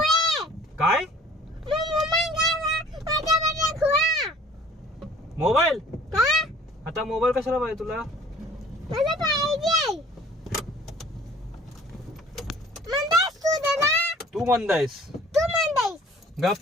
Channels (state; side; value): normal; both; correlation 0.52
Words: काय मोबाईल? आता मोबाईल कशाला पाहिजे तुला? तू म्हणतायस? गप